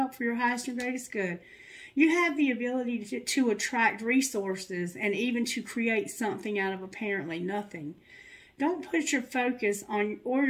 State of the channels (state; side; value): identical; both; correlation 1.00